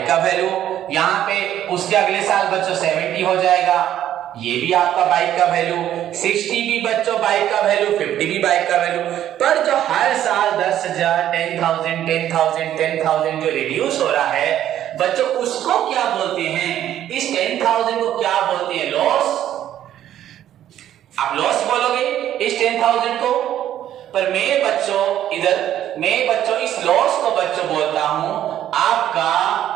का वैल्यू, यहां पे उसके अगले साल बच्चों 70 हो जाएगा, ये भी आपका बाइक का वैल्यू, 60 भी बच्चों बाइक का वैल्यू, 50 भी बाइक का वैल्यू। पर जो हर साल 10,000 10,000 10,000 10,000 जो रिड्यूस हो रहा है बच्चों, उसको क्या बोलते हैं? इस 10,000 को क्या बोलते हैं? लॉस। आप लॉस बोलोगे इस 10,000 को, पर मैं बच्चों इस लॉस को बच्चों बोलता हूं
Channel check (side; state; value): left; quieter; 11.6 dB